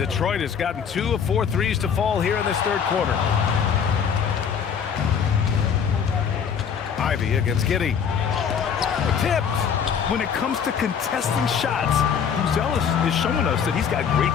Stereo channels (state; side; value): quieter; right; 7.2 dB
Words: has gotten 2 of 4 threes to fall here in this third quarter. Ivy against Giddey. Tipped. when it comes to contesting shots, Buzelis is showing us that he's got great